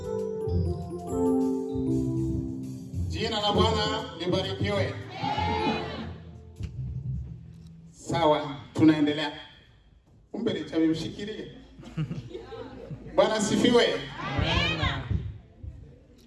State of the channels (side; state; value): both; identical; correlation 1.00